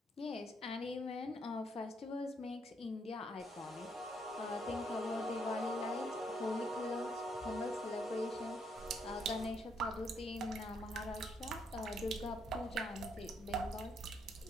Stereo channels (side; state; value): both; normal; correlation 0.74